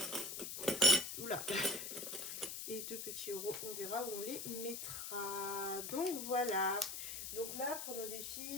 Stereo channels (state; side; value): noise; left; hiss, 5 dB below the sound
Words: Oula. Et 2 petits euros, on verra où on les mettra. Donc voilà. Donc là, pour nos